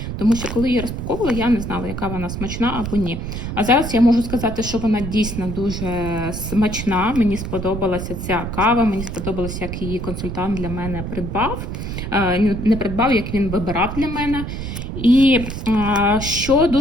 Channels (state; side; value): noise; right; rumble, 6 dB below the sound